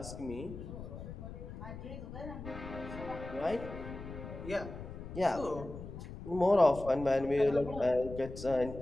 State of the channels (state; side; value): noise; left; rumble, 11 dB below the sound